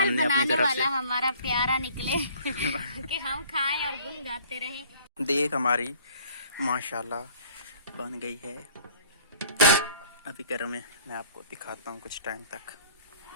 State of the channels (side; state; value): both; inverted; correlation -0.54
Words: अपनी बनाने तरफ वाला से। हमारा प्यारा निकले कि हम खाएं और गुन गाते रहें। देख हमारी माशाल्लाह बन गई है। अभी गर्म है, मैं आपको दिखाता हूँ कुछ टाइम तक।